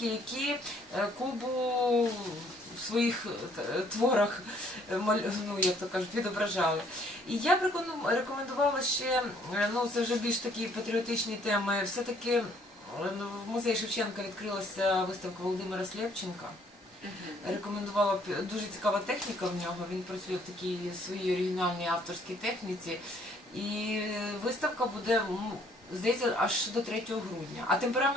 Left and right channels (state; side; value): normal; both; correlation 0.63